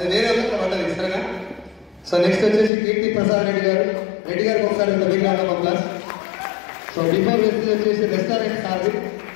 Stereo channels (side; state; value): right; drops out; at 2.7 s